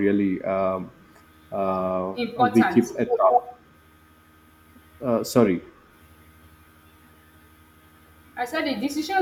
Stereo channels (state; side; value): identical; both; correlation 1.00